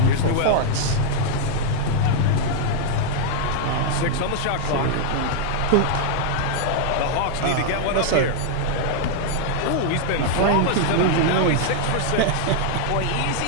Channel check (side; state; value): both; different; correlation -0.01